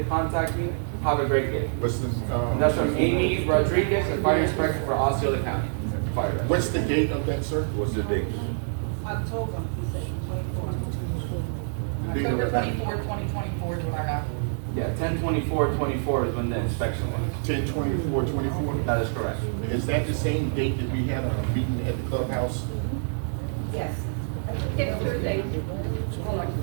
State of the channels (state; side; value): silent; left; digital silence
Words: contact me. Have a great day. What's the, And that's from Amy Rodriguez, the fire inspector for Osceola County. Fire. what's the date of that, sir? What's the date? October. The date of October that? 24th, 2024 is what I got. Yeah, 10/24/24 is when the inspection was. 10/24/24? That is correct. Is that the same date that we had a meeting at the clubhouse? Yes. It's Tuesday. Hold on.